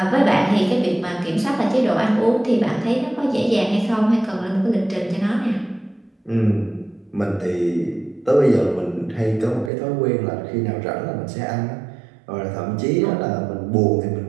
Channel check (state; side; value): drops out; left; at 9.7 s